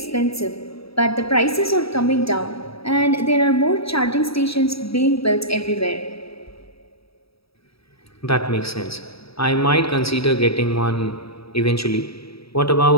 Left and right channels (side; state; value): right; late; 0.77 ms